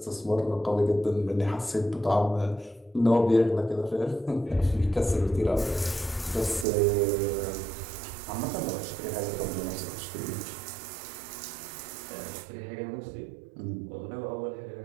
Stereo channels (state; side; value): drops out; left; at 6.7 s